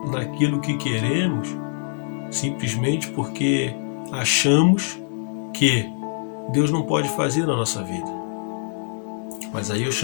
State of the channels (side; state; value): right; silent; digital silence